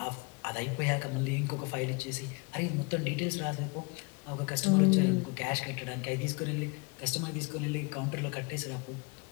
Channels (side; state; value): right; quieter; 28.3 dB